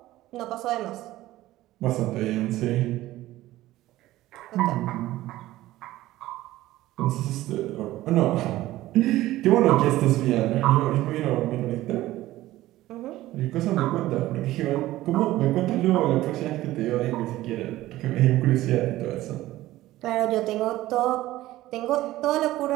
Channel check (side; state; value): left; quieter; 16.0 dB